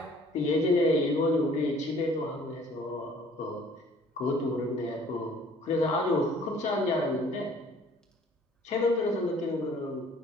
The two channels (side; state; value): both; normal; correlation 0.55